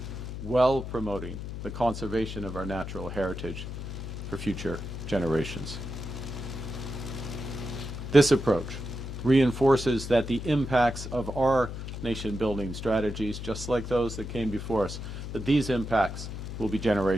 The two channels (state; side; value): noise; left; hum, 7 dB below the sound